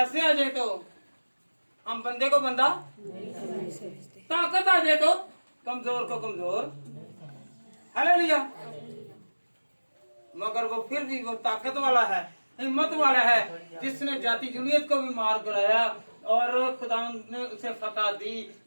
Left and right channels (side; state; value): both; inverted; correlation -1.00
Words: आ जाए तो हम बंदे को बंदा, ताकत आ जाए तो कमजोर को कमजोर। हालेलुया। मगर वो फिर भी वो ताकत वाला है, हिम्मत वाला है, जिसने जाति जुनियत को भी मार गिराया और खुदावंद ने उसे फतह दी,